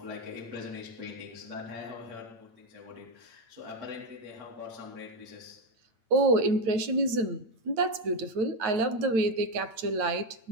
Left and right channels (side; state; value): left; late; 8.7 ms